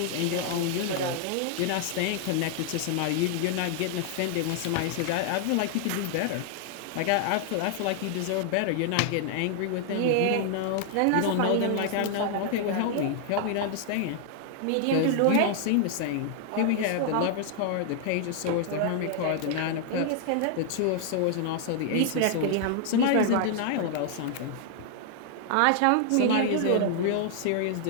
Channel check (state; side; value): different; both; correlation 0.00